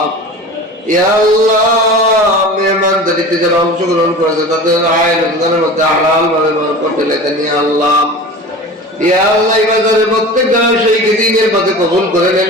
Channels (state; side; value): normal; both; correlation 0.35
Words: ইয়া আল্লাহ, মেহমানদারিতে যারা অংশগ্রহণ করেছে তাদের আয় রোজগারের মধ্যে হালাল ভাবে বরকত ঢেলে দেন। ইয়া আল্লাহ, ইয়া আল্লাহ, এই বাজারে প্রত্যেক জনের সেই দিনের পথে কবুল করে নেন।